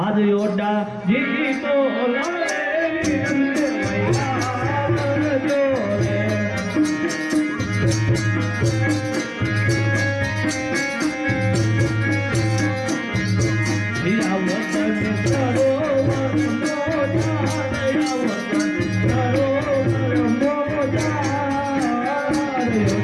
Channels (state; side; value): identical; both; correlation 1.00